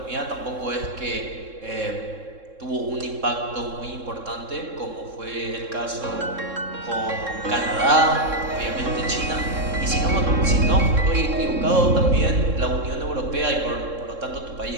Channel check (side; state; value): left; late; 3.7 ms